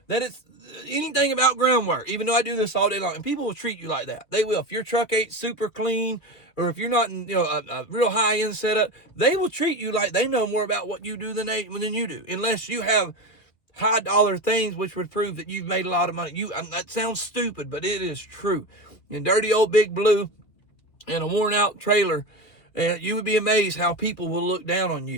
that it's anything about groundwork, even though I do this all day long. And people will treat you like that. They will. If your truck ain't super clean, or if you're not in a real high-end setup, they will treat you like they know more about what you do than you do, unless you have high-dollar things which would prove that you've made a lot of money. That sounds stupid, but it is true. In dirty old Big Blue and a worn-out trailer, you would be amazed how people will look down on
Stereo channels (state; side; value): late; right; 2.6 ms